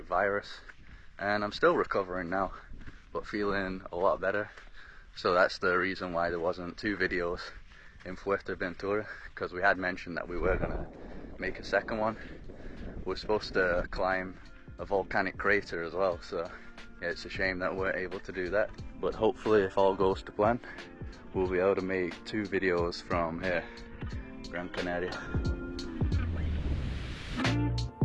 virus, and I'm still recovering now, but feeling a lot better. So that's the reason why there wasn't two videos in Fuerteventura, because we had mentioned that we were gonna make a second one. We're supposed to climb a volcanic crater as well, so yeah, it's a shame that we weren't able to do that. But hopefully, if all goes to plan, we'll be able to make two videos from here, Gran Canaria.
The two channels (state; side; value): identical; both; correlation 1.00